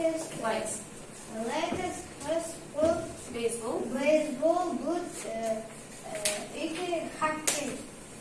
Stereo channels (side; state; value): both; identical; correlation 1.00